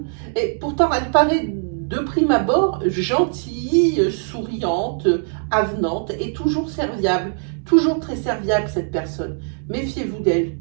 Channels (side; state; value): left; silent; digital silence